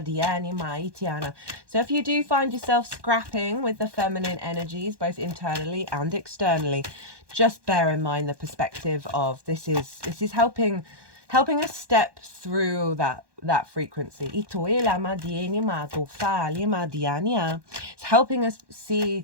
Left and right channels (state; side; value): late; left; 1.2 ms